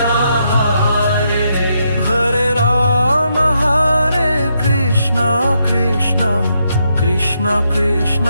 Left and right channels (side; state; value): both; inverted; correlation -0.79